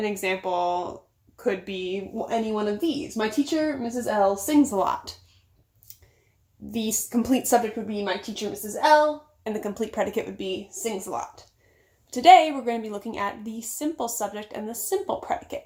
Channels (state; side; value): identical; both; correlation 1.00